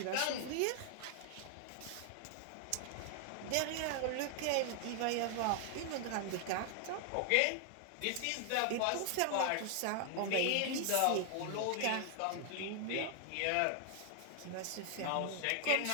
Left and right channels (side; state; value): both; different; correlation 0.00